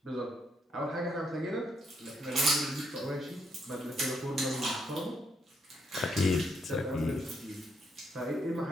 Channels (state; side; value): normal; both; correlation 0.76